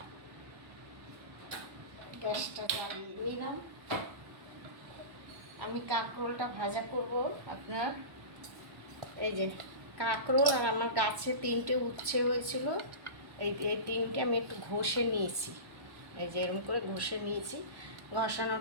গ্যাসটা জ্বালিয়ে নিলাম। আমি কাঁকরোলটা ভাজা করব। আপনার এই যে কাঁকরোল, আর আমার গাছে 3টে উচ্ছে হয়েছিল। এই এই 3টে আমি একটু ঘষে নিয়েছি। এই যে এরকম করে ঘষে নিয়েছি।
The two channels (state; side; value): late; left; 1.1 ms